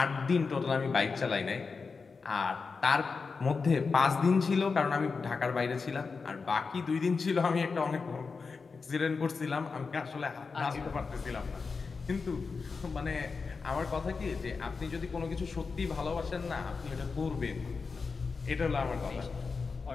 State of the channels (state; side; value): quieter; right; 4.7 dB